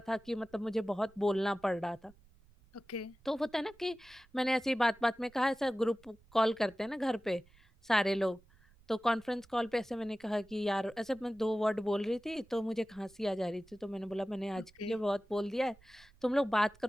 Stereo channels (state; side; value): noise; right; rumble, 28 dB below the sound